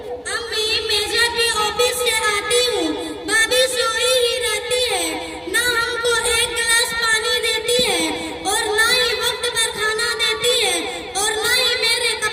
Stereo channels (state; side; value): identical; both; correlation 1.00